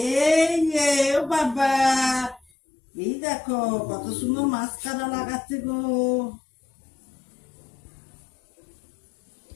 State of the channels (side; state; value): right; drops out; at 2.5 s